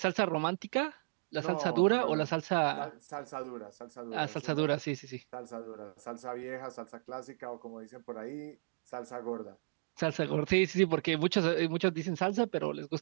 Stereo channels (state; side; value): silent; left; digital silence